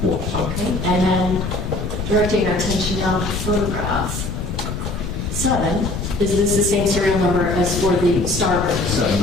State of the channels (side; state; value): left; noise; rumble, 5 dB below the sound